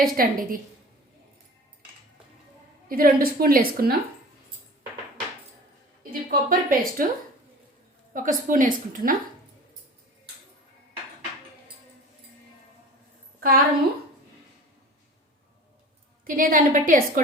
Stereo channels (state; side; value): normal; both; correlation 0.40